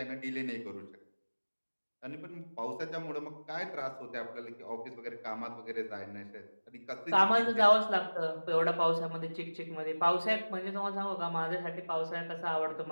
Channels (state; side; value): inverted; both; correlation -1.00